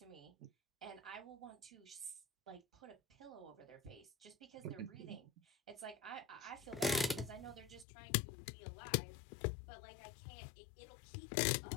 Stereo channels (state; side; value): drops out; right; at 7.9 s